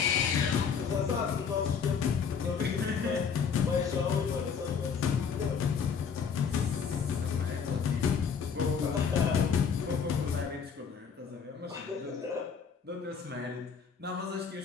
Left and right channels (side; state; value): right; quieter; 6.5 dB